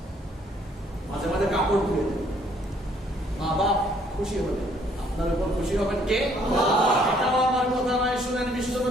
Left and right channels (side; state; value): both; normal; correlation 0.64